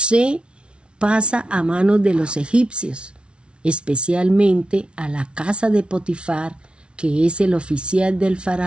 pasa a manos de los egipcios, especialmente a la casa de Potifar, que es el oficial del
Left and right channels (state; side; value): late; left; 0.058 ms